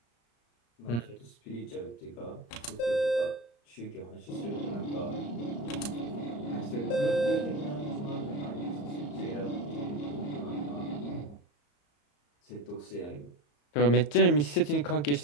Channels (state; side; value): late; right; 34 ms